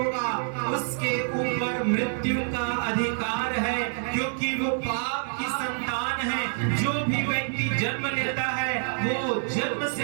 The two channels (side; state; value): left; silent; 60 dB below the other